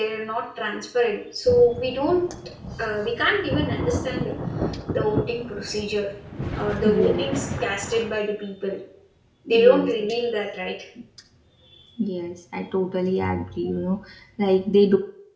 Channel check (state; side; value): identical; both; correlation 1.00